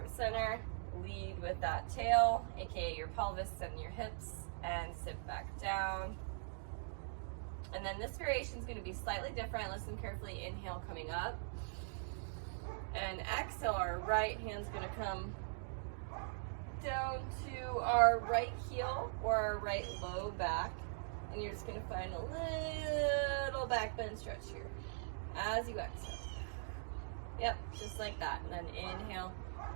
center. Lead with that tail, aka your pelvis and your hips, and sit back down. And then this variation is going to be slightly different. Listen carefully. Inhale, coming up. And exhale, our right hand's going to come down to our right heel or our right low back. And you're just going to find a little back bend stretch here as you exhale. Yep, just like that. And then inhale,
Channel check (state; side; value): silent; left; digital silence